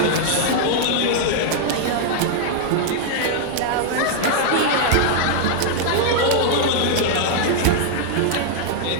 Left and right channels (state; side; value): different; both; correlation -0.01